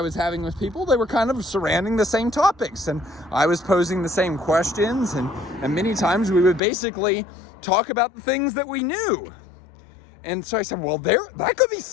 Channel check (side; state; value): right; drops out; at 6.6 s